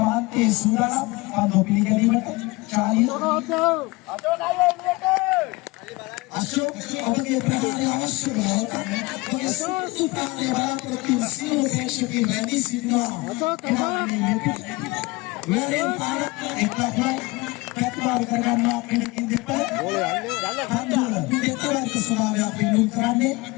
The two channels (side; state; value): right; quieter; 23.2 dB